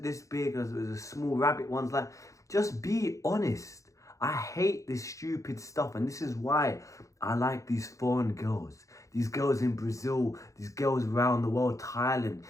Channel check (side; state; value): right; late; 0.15 ms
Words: this big? Was it a small rabbit ones? Like, just be honest. I hate this stupid stuff, and this is why I like these foreign girls. These girls in Brazil, these girls around the world, Thailand,